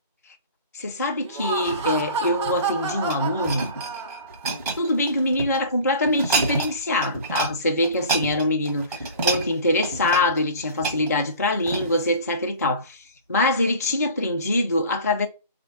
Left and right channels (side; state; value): both; inverted; correlation -0.42